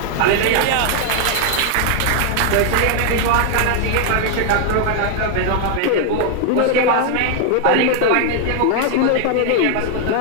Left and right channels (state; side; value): different; both; correlation 0.00